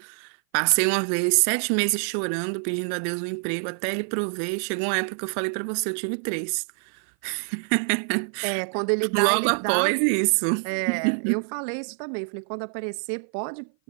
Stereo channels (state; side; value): silent; left; 57 dB below the other